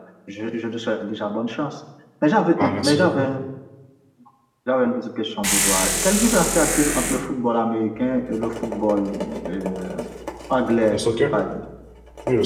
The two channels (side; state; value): both; identical; correlation 1.00